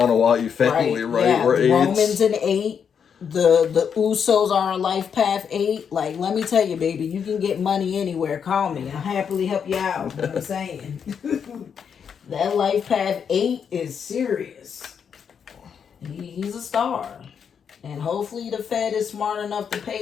family, right? Yeah, We're the Romans in 8. The Usos are on life path 8. Like, let me tell you, baby, you can get money anywhere. Call me. I'll happily help you out. You know what I'm saying? That life path 8 is serious. He's a star. And hopefully the Fed is smart enough to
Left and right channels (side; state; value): right; quieter; 7.2 dB